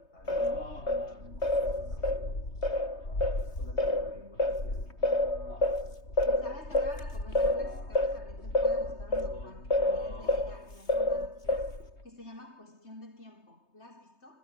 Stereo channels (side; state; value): right; late; 3.2 ms